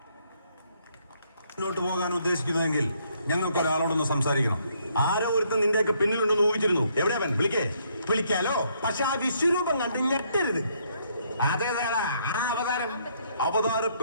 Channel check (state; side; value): inverted; both; correlation -0.70